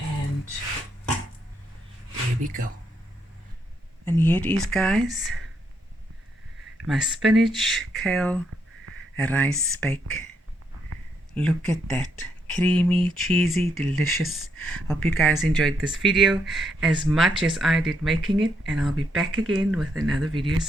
there we go. And here it is guys, my spinach, kale, rice bake. Look at that, creamy, cheesy, delicious. Hope you guys enjoyed this video as much as I did making it, and I'll be back again with another video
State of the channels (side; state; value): both; normal; correlation 0.77